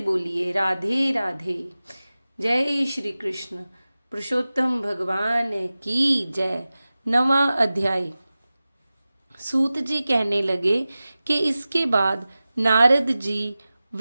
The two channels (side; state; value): both; inverted; correlation -0.96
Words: राधे राधे। जय श्री कृष्ण। पुरुषोत्तम भगवान की जय। 9वां अध्याय। सूत जी कहने लगे कि इसके बाद नारद जी